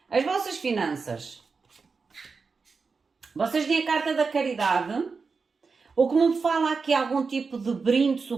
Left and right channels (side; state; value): left; quieter; 4.8 dB